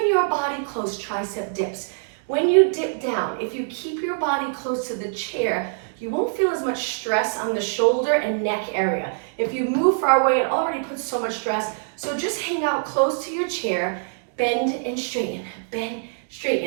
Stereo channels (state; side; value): silent; left; digital silence